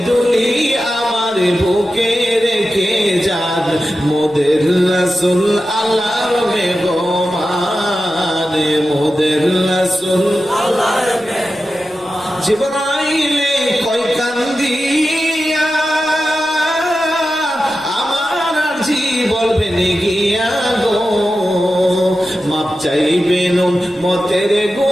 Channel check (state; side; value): normal; both; correlation 0.92